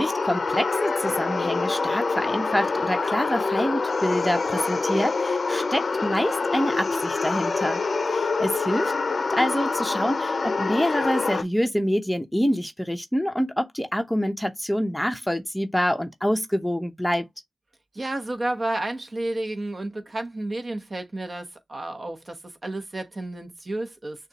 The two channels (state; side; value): normal; both; correlation 0.96